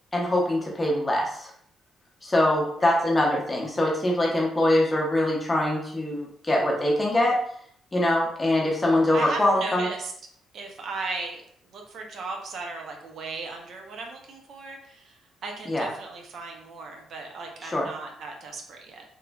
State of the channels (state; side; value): normal; both; correlation 0.87